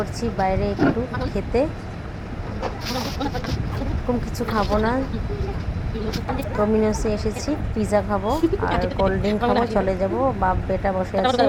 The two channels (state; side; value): identical; both; correlation 1.00